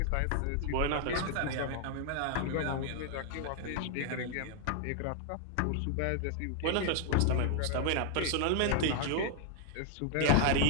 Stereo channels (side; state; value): both; different; correlation 0.00